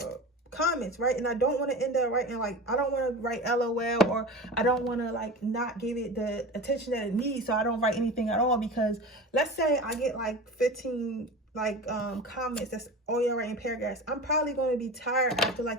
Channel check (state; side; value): normal; both; correlation 0.31